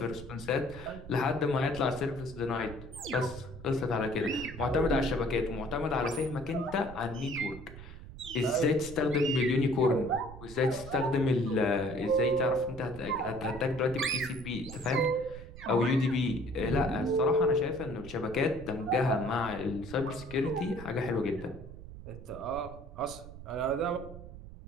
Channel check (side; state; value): right; noise; rumble, 14 dB below the sound